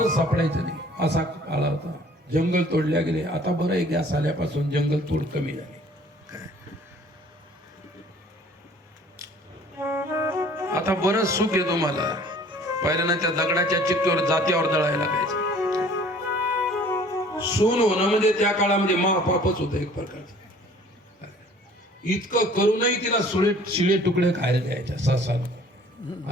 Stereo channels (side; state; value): both; normal; correlation 0.52